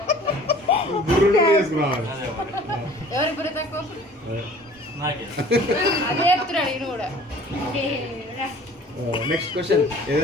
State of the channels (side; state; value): both; normal; correlation 0.49